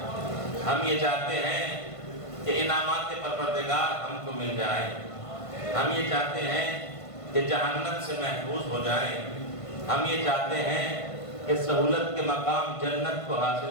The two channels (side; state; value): right; late; 1.5 ms